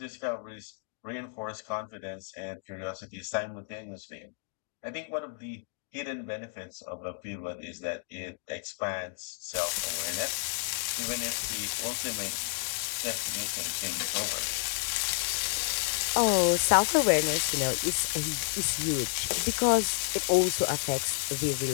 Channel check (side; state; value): right; silent; 57 dB below the other